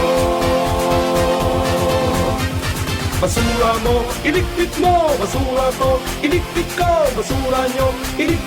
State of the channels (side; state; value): both; identical; correlation 1.00